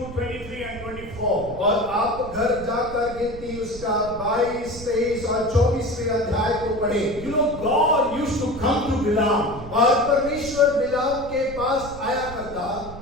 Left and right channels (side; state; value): right; noise; rumble, 13 dB below the sound